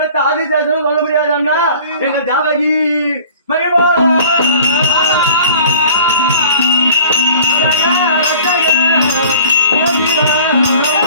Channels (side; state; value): both; inverted; correlation -0.48